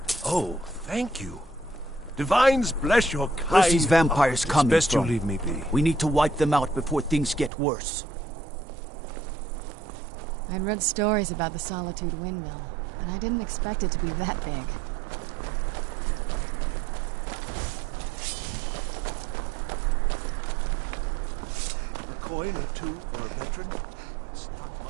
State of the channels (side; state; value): left; drops out; at 7.5 s